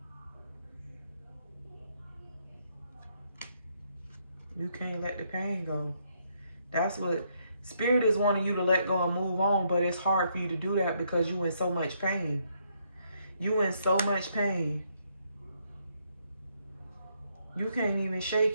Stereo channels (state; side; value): inverted; both; correlation -0.73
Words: You can't let the pain go. That's what Spirit is wanting you to let go and move on, but it's hard for you to do that because you in so much pain. You in so much pain. You can't even